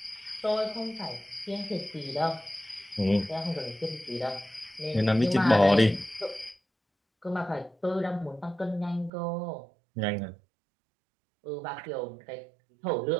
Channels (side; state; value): left; drops out; at 9.1 s